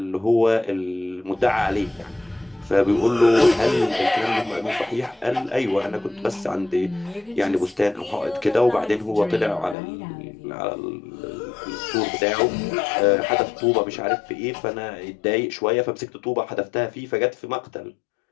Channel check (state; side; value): drops out; right; at 9.8 s